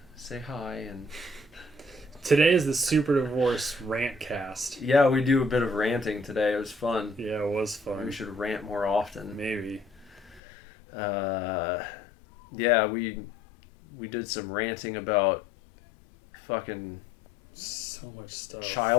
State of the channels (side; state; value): right; drops out; at 10.4 s